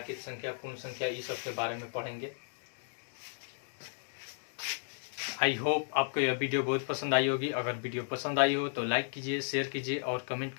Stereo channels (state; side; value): silent; right; 55 dB below the other